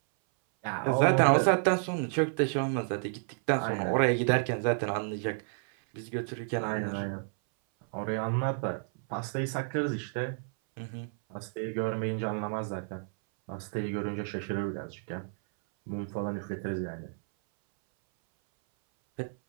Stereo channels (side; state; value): left; silent; 57 dB below the other